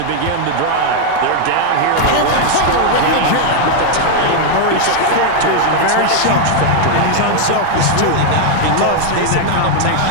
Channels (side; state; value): both; different; correlation 0.00